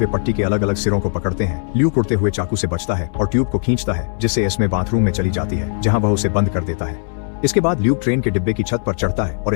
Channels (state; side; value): silent; right; digital silence